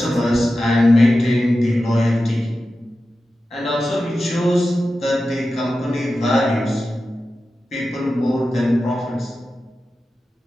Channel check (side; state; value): both; normal; correlation 0.93